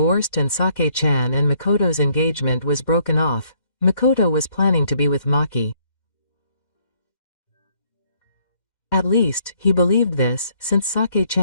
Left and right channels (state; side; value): late; right; 2.1 ms